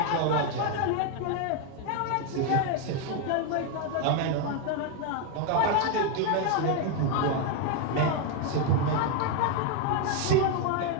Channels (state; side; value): different; both; correlation 0.01